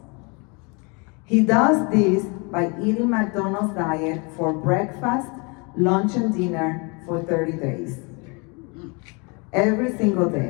He does this by eating McDonald's diet for breakfast, lunch, and dinner for 30 days. Every single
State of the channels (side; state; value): right; quieter; 31.0 dB